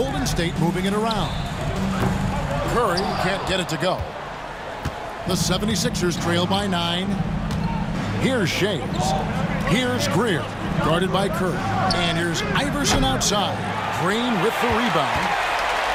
State moving it around. Curry can't get it to go. The 76ers trail by 9. Here's Shays. Here's Greer, guarded by Curry. And here's Iverson outside. Green with the rebound.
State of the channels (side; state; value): both; identical; correlation 1.00